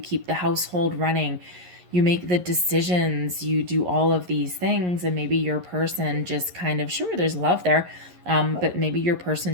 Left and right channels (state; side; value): late; left; 11 ms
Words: household running, you make the decisions, you do all of these things, and maybe your person just kind of, sure, there's love there, but maybe your